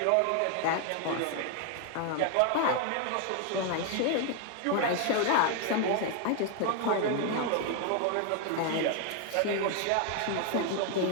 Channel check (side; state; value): both; different; correlation 0.00